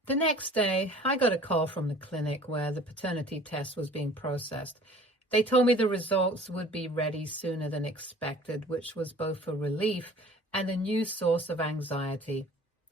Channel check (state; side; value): normal; both; correlation 0.48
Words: The next day, I got a call from the clinic where the paternity test was being processed. They told me the results would be ready sooner than expected, which was both a relief and a new source of anxiety.